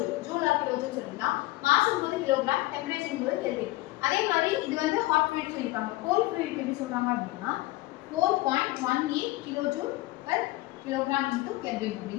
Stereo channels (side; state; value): right; quieter; 19.0 dB